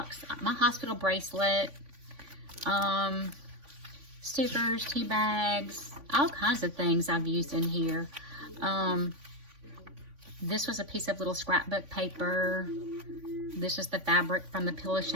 My hospital bracelet. Stickers, tea bags, all kinds of things I've used in here. This was a piece of little scrapbook paper. This is the fabric from the Pillow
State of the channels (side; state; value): left; late; 3.5 ms